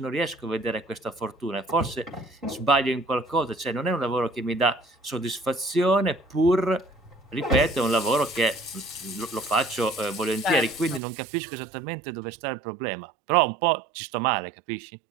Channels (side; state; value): left; drops out; at 11.0 s